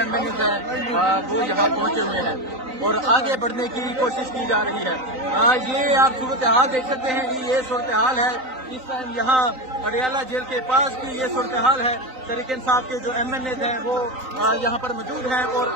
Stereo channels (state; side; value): late; left; 3.9 ms